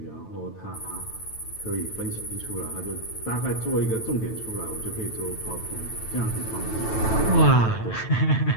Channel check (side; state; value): right; late; 9.1 ms